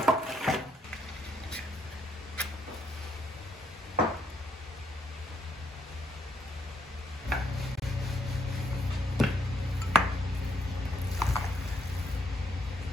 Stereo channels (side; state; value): both; normal; correlation 0.74